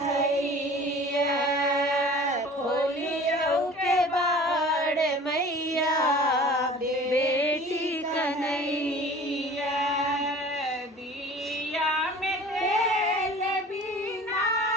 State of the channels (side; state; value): both; normal; correlation 0.44